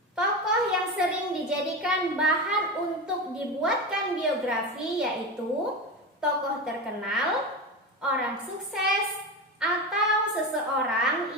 Tokoh yang sering dijadikan bahan untuk dibuatkan biografi yaitu tokoh terkenal, orang sukses, atau seseorang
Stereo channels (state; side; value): normal; both; correlation 0.22